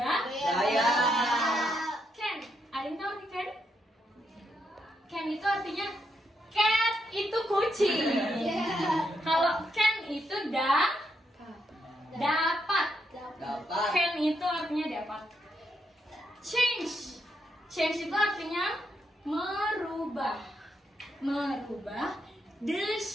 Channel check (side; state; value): both; normal; correlation 0.79